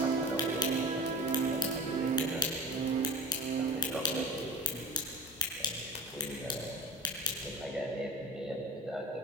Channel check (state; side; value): normal; both; correlation 0.34